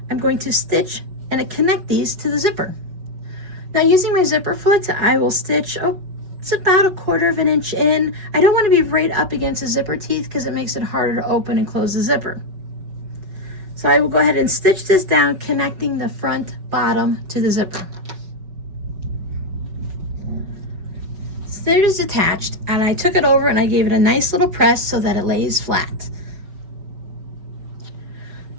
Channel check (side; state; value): left; late; 5.3 ms